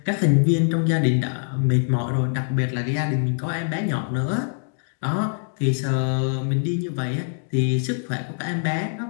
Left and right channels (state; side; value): silent; right; digital silence